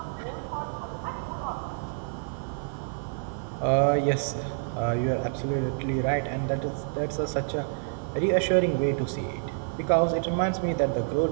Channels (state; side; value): silent; left; digital silence